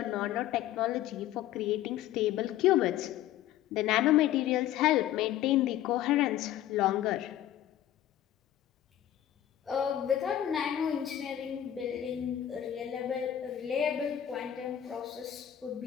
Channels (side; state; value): right; quieter; 11.9 dB